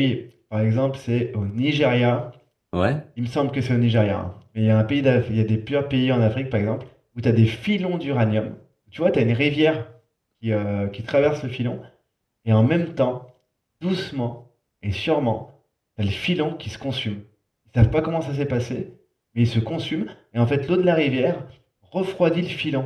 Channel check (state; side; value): identical; both; correlation 1.00